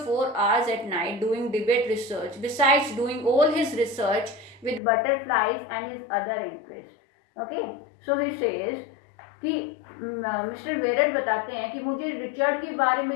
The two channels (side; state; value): right; drops out; at 4.8 s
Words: 4 hours at night doing debate research, besides doing all his research with butterflies and his other interest. Okay, so he says कि mister वेरर बताते हैं कि मुझे Richard के बारे